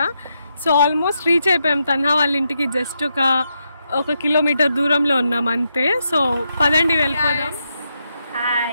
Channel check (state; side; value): inverted; both; correlation -0.82